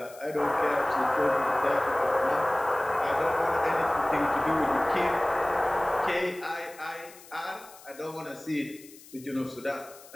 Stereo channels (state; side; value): noise; left; hiss, 21 dB below the sound